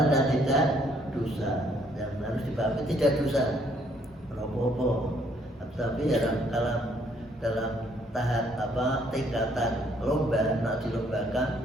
dan tidak dosa. Yang harus dipahami tidak dosa, apa-apa. Tapi dalam tahap tingkatan lomba, nak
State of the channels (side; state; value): both; normal; correlation 0.66